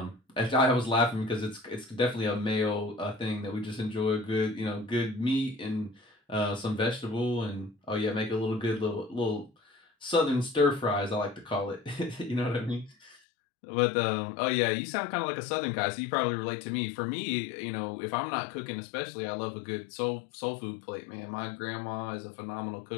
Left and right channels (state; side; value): drops out; right; at 13.2 s